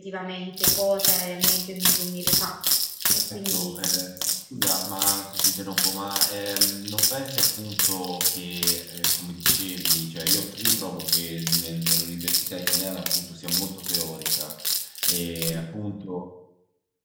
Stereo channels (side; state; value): both; identical; correlation 1.00